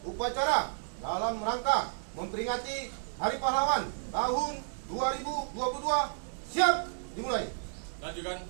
upacara dalam rangka memperingati Hari Pahlawan tahun 2022 siap dimulai. Lanjutkan.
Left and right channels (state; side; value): silent; left; digital silence